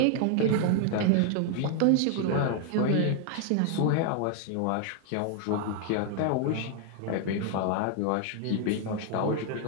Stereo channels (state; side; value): different; both; correlation 0.00